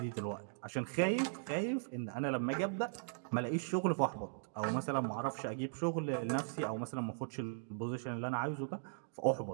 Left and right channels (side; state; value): left; silent; digital silence